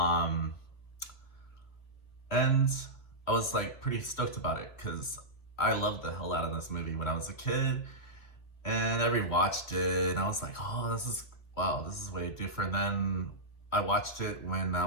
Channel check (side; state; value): right; late; 3.0 ms